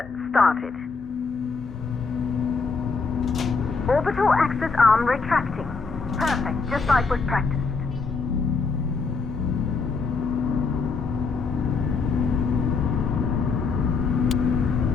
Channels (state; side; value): quieter; right; 4.6 dB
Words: started. Orbital axis arm retracting. Perfect, just like was practiced.